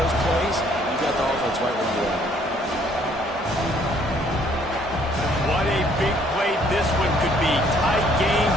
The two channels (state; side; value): normal; both; correlation 0.63